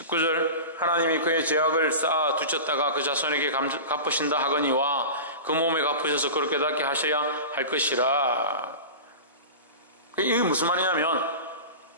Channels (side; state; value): both; inverted; correlation -0.30